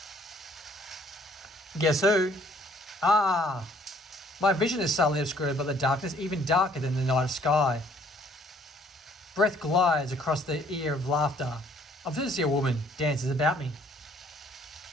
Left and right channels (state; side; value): normal; both; correlation 0.61